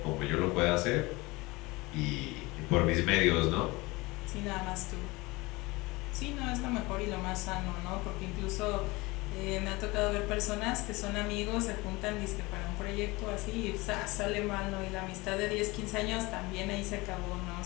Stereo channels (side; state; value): right; quieter; 22.9 dB